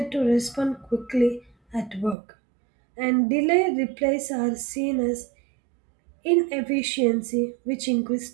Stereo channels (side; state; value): left; drops out; at 2.1 s